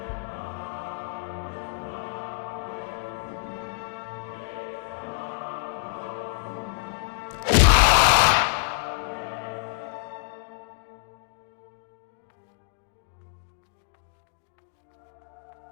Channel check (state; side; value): silent; right; digital silence